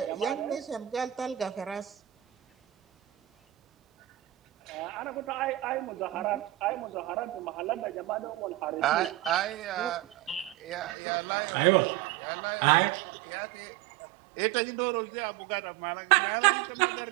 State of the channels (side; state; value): left; drops out; at 10.9 s